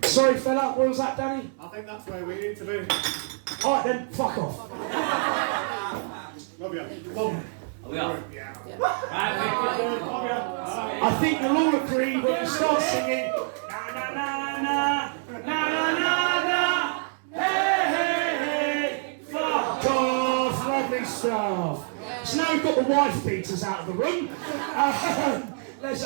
Sorry, fella, what was that, Danny? I think that's where we need to do. Alright then, fuck off. Love you. Love you. We are. I think you'll all agree when you start singing na na na na na na na na hey hey hey fuck off, lovely stuff. So now we've got the wife beaters out of the room. Let's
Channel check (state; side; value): silent; left; digital silence